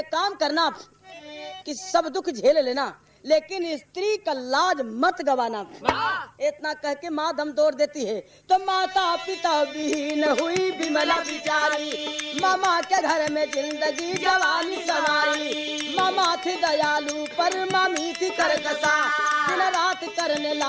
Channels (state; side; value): identical; both; correlation 1.00